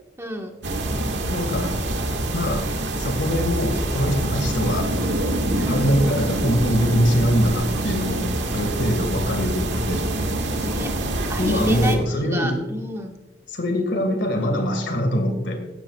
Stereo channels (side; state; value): both; normal; correlation 0.68